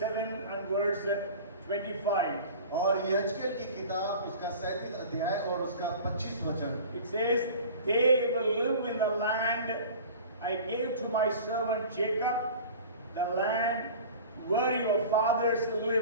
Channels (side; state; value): both; inverted; correlation -0.40